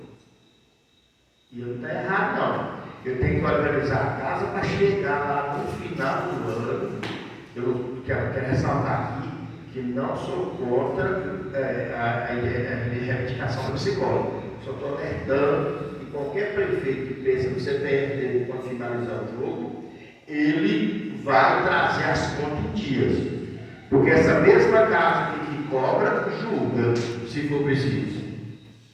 E não está errado, não. Eu tenho que organizar a casa para chegar lá no final do ano. Eu quero ressaltar aqui que não sou contra a reivindicação do psicólogo. Só estou alertando que qualquer prefeito que pensa no CPF dele para finalizar o jogo, ele vai trazer as contas em dias. Porque essa mesma casa que cobra, julga, se for preciso.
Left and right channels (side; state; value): both; identical; correlation 1.00